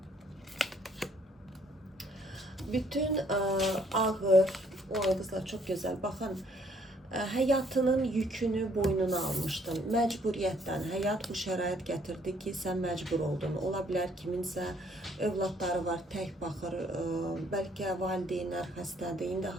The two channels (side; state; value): both; normal; correlation 0.64